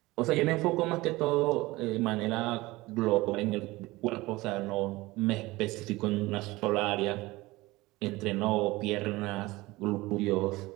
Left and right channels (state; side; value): quieter; left; 20.5 dB